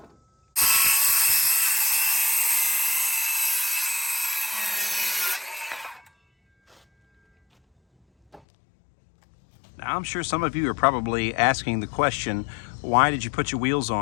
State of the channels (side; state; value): right; drops out; at 8.4 s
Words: Now, I'm sure some of you are probably asking the question, why did you put your wheels